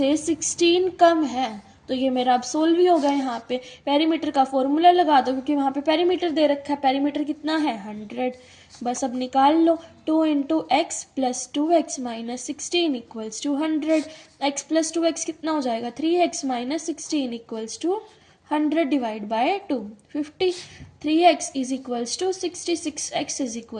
16 कम है। तो ये मेरा अब सोल्व ही होगा। यहाँ पे पेरीमीटर का फॉर्मूला लगा दो क्योंकि वहाँ पे पेरीमीटर दे रखा है। पेरीमीटर कितना है 100, बस अब निकाल लो। 2 × x + 2x - 16 = 100, x + 2x कितना हो जाएगा 3x - 16 = 100 divide by 2 50, 3x is equals to 66, x is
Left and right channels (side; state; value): both; identical; correlation 1.00